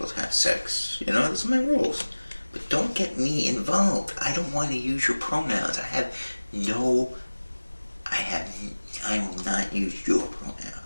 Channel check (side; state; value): both; inverted; correlation -1.00